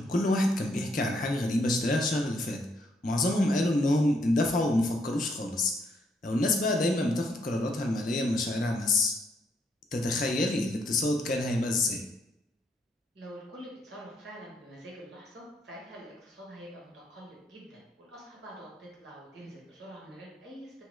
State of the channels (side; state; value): both; normal; correlation 0.73